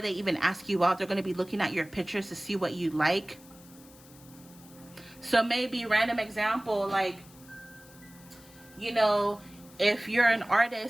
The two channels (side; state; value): left; noise; hiss, 23 dB below the sound